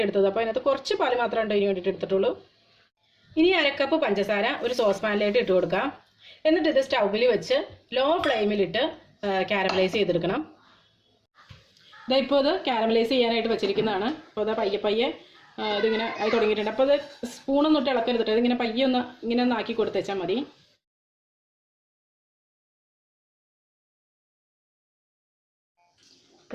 എടുത്തത്. അപ്പോൾ അതിനകത്ത് കുറച്ച് പാല് മാത്രമേ ഇതിന് വേണ്ടിയിട്ട് എടുത്തിട്ടുള്ളൂ. ഇനി 1/2 കപ്പ് പഞ്ചസാര ഒരു സോസ് പാനിലേക്ക് ഇട്ട് കൊടുക്കാം. എന്നിട്ട് ഇത് സ്റ്റൗവിൽ വെച്ച് ലോ ഫ്ലെയിമിലിട്ട് കാരമലൈസ് ചെയ്തെടുക്കണം. ഇപ്പോൾ ഇത് കാരമലൈസ് ചെയ്യാനായിട്ട് വെച്ചിരിക്കുന്നതാണ്. അപ്പോൾ അത് പയ്യെ പയ്യെ ഇതിങ്ങനെ ആയി തുടങ്ങിയിട്ടുണ്ട്. അപ്പോൾ അത് സ്പൂണൊന്നും ഇട്ട് ഇളക്കരുതിട്ട് ഇതിങ്ങനെ പയ്യെ ഇങ്ങനെ ഒന്ന് ആക്കി കൊടുത്തേച്ചാൽ മതി.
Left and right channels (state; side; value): identical; both; correlation 1.00